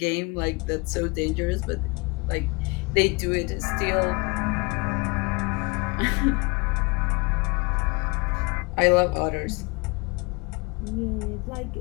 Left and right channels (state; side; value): quieter; right; 28.2 dB